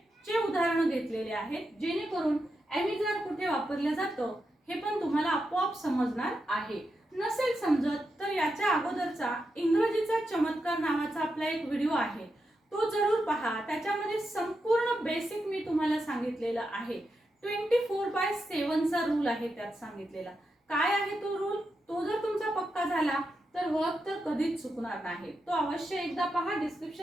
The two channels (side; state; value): both; normal; correlation 0.86